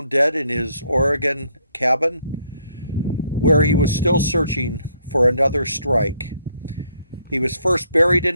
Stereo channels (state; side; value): inverted; both; correlation -0.68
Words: dead in his Oregon cabin, where he was still searching for another strike. He was first buried in